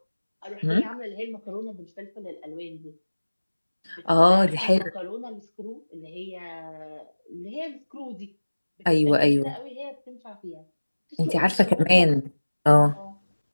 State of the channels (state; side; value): inverted; both; correlation -1.00